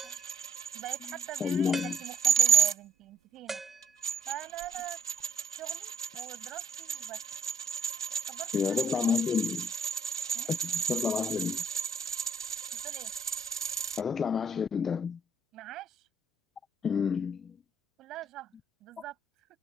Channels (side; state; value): both; normal; correlation 0.66